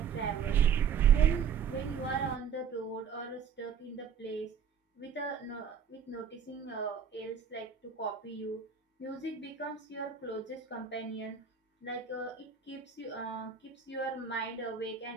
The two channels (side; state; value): left; quieter; 7.1 dB